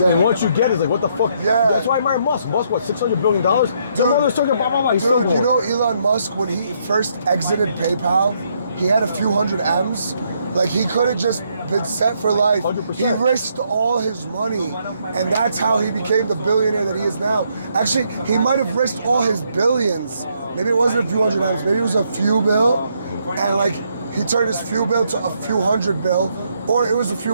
And once you get it, it's like, what the fuck? Yeah. That's why I admire Musk. Musk, what, $600 billion? Dude, you know Elon Musk, when he first exited PayPal, he had a few hundred M's. Like, he could have just been set for life. 100%. He risked all his money, and that's how he became the billionaire that he is now. Actually, he might have risked all his billions. Maybe it wasn't a few hundred M's, maybe it was a few bill, and like, he turned his few bill to a few hundred bill, or it was a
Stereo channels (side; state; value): both; inverted; correlation -0.73